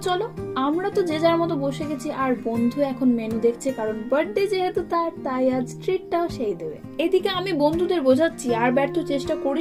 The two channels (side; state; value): both; identical; correlation 1.00